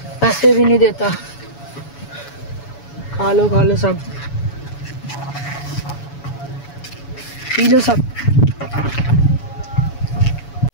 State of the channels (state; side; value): late; right; 7.1 ms